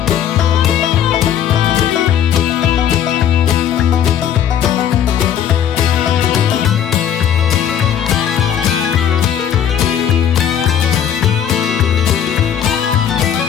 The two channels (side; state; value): right; quieter; 9.3 dB